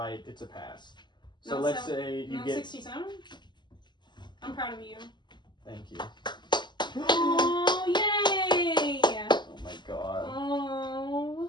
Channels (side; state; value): right; late; 0.21 ms